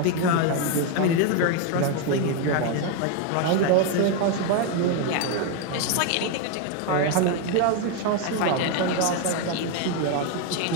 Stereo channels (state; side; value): different; both; correlation 0.01